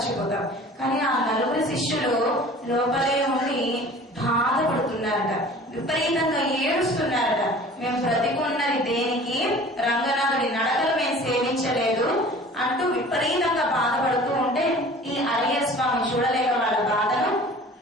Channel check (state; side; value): normal; both; correlation 0.45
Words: కానీ ఆ 4 శిష్యులు లోపలే ఉండి బాధపడుతున్నారట, విపరీతంగా ఏడుస్తున్నారట. మేము బ్రతికున్నది దేనికి? రంగనాథుడి నడకలు మేము సేవించలేదు అంటూ విపరీతంగా బాధపడుతూ ఉంటే ఈ అరయ్య స్వామి చూడలేక వాళ్ళ బాధను